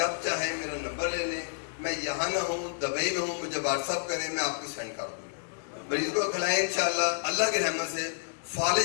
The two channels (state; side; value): silent; right; digital silence